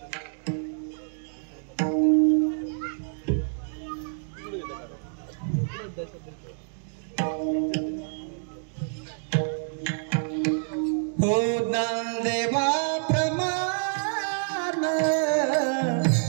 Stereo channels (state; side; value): silent; left; digital silence